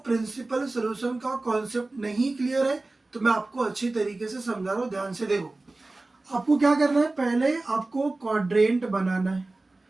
सोल्यूशन का कॉन्सेप्ट नहीं क्लियर है तो मैं आपको अच्छी तरीके से समझा रहा हूँ, ध्यान से देखो। आपको क्या करना है, पहले आपको क्वाड्रेंट बनाना है।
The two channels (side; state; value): left; quieter; 3.1 dB